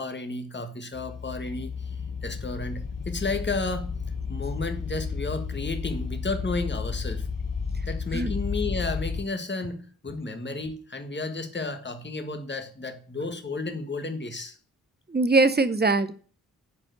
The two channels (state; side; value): normal; both; correlation 0.51